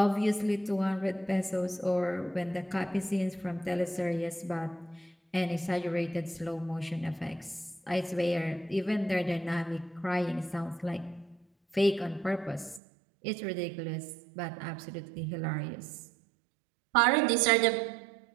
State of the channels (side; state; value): left; drops out; at 12.8 s